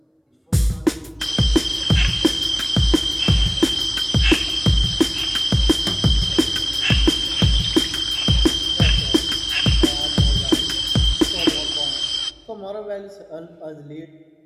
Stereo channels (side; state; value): both; identical; correlation 1.00